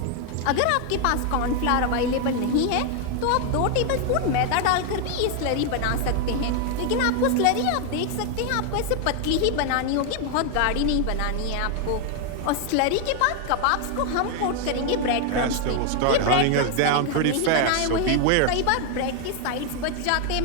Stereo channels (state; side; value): different; both; correlation 0.00